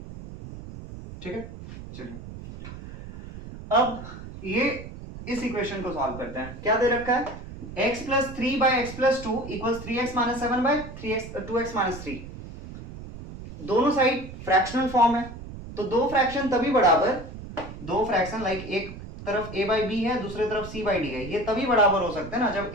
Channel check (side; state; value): right; noise; rumble, 12 dB below the sound